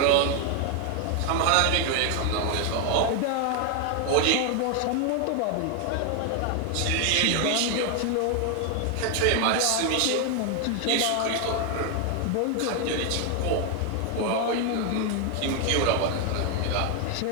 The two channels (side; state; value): both; different; correlation 0.01